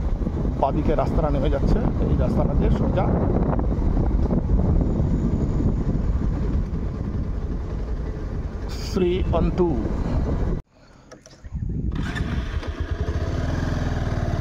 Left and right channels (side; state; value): both; identical; correlation 1.00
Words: বাদিকে রাস্তাটা নেমে যাচ্ছে। এই রাস্তাটা দিয়ে সোজা শ্রীঅন্তু।